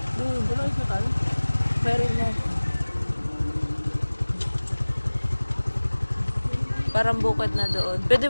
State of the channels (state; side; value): inverted; both; correlation -1.00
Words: Doon, Wala ikutan. meron yan. Parang bukid na doon. Pwede